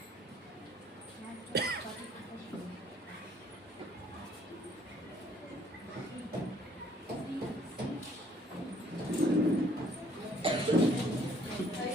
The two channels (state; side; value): normal; both; correlation 0.62